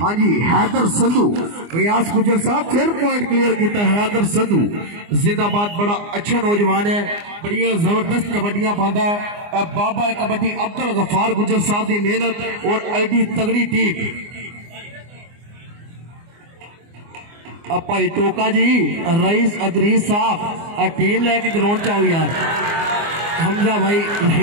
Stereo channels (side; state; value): left; late; 24 ms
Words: जी हैदर संधू रियाज गुजर साहब फिर पॉइंट क्लियर किया। हैदर संधू जिंदाबाद बड़ा अच्छा नौजवान है बड़िया जबरदस्त कबड्डियां पाता है। बाबा कबड्डी अब्दुल गफार गुजर साहब की मेहनत और एडी तगड़ी टीम। भाई टोका जी रईस अदरीस साहब टीम लेके ग्राउंड च आओ यार। हमजा भाई